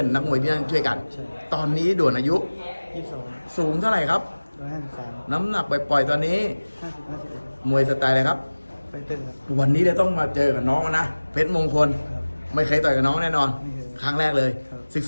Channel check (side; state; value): both; inverted; correlation -1.00